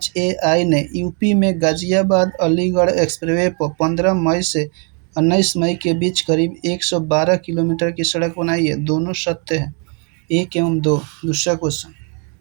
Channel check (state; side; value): quieter; left; 38.4 dB